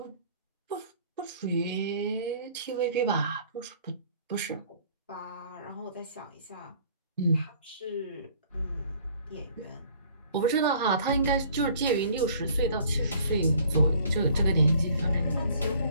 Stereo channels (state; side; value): inverted; both; correlation -0.55